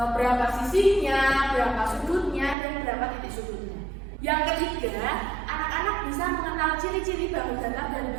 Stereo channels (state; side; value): drops out; left; at 2.6 s